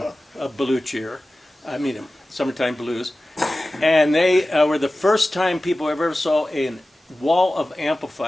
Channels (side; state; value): both; normal; correlation 0.96